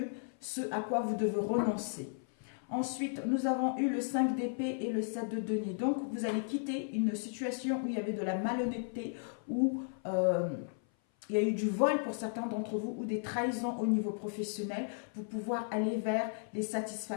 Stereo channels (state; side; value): silent; right; 55 dB below the other